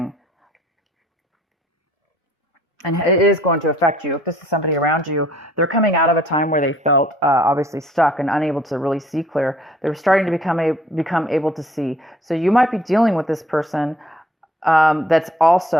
And it is going to affect you. If this is somebody around you, they're coming out of a time where they felt obviously stuck and unable to really see clear. They're starting to become able to see. So you might be dealing with this person that's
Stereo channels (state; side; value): normal; both; correlation 0.58